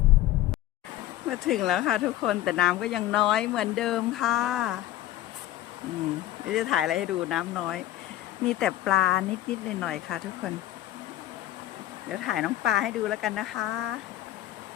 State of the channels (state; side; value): quieter; right; 14.1 dB